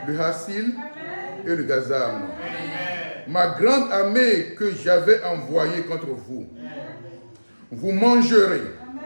le hassil et le gazam. Ma grande armée que j'avais envoyée contre vous. Vous mangerez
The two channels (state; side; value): inverted; both; correlation -1.00